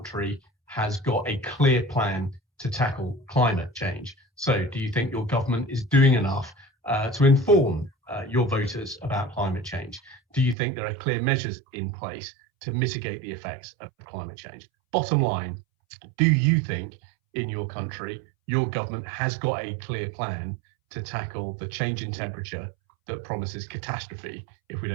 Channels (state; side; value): drops out; left; at 10.6 s